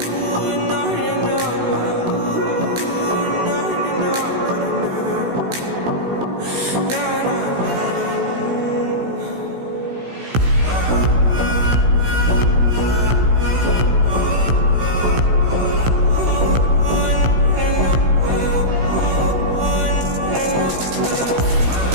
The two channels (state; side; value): late; left; 16 ms